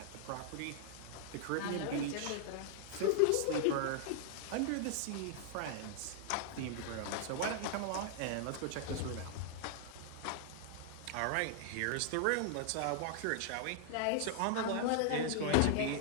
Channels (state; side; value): different; both; correlation 0.00